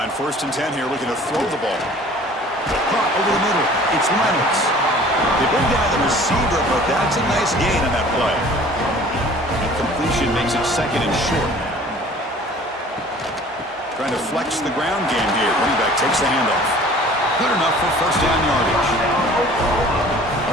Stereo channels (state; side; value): normal; both; correlation 0.48